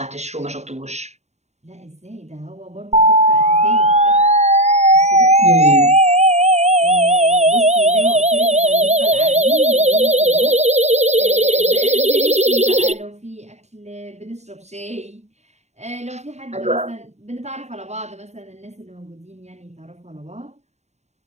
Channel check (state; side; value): late; left; 0.32 ms